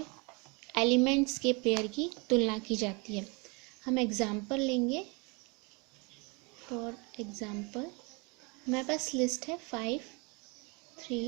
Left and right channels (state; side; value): quieter; left; 29.7 dB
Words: elements के pair की तुलना की जाती है. हम example लेंगे. फॉर एग्जाम्पल हमारे पास लिस्ट है 5,